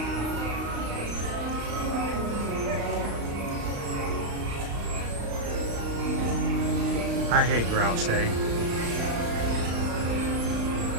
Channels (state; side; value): late; left; 35 ms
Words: I hate Grouch Day.